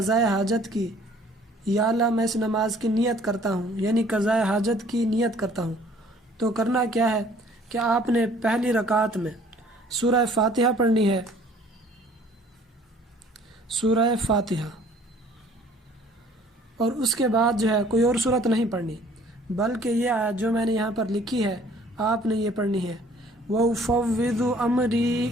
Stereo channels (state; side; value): normal; both; correlation 0.55